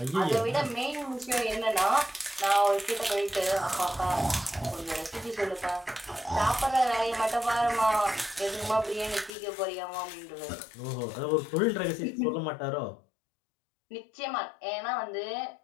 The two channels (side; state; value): right; drops out; at 9.3 s